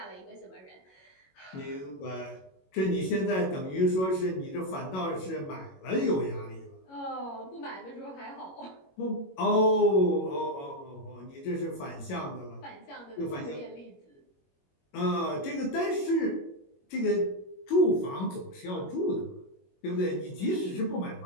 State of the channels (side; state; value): right; late; 21 ms